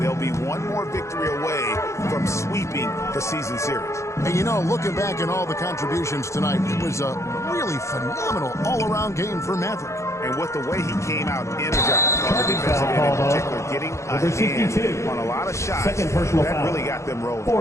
they'll be one more victory away from sweeping the season series. And you know, looking back at all the contributions tonight, it was a really phenomenal all-around game for Maverick. And with the way he came out energized on the defensive end in particular, getting a hand on a lot of shots, that really got them rolling.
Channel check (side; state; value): right; late; 0.14 ms